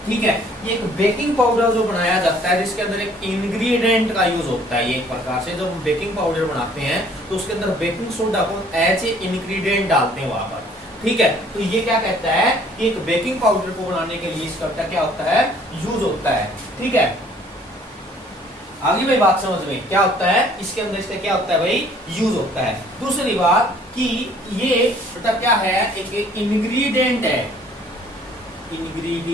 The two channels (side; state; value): both; normal; correlation 0.57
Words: ठीक है। ये एक बेकिंग पाउडर जो बनाया जाता है जिसके अंदर एक इंग्रेडिएंट का यूज होता है, ये एक प्रकार से जब हम बेकिंग पाउडर बनाते हैं तो उसके अंदर बेकिंग सोडा को एज ए इंग्रेडिएंट डालते हैं वहां पर, ठीक है। तो ये क्या कहता है कि एक बेकिंग पाउडर को बनाने के लिए इसका क्या होता है, यूज होता है, ठीक है। आगे भाई बात समझ में, क्या होता है इसके अंदर, इसका क्या होता है भाई, यूज होता है। दूसरी बात कि ये मतलब क्या है, एक इंग्रेडिएंट है,